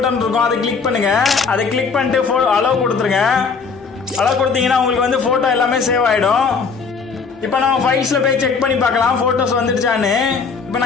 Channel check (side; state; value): right; quieter; 5.2 dB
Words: இருக்கும், அதை கிளிக் பண்ணுங்க. அதை கிளிக் பண்ணிட்டு அலோவ் கொடுத்துருங்க. அலோவ் கொடுத்தீங்கன்னா உங்களுக்கு வந்து போட்டோ எல்லாமே சேவ் ஆயிடும். இப்போ நம்ம ஃபைல்ஸ்ல போய் செக் பண்ணி பார்க்கலாம் போட்டோஸ் வந்துடுச்சான்னு. இப்போ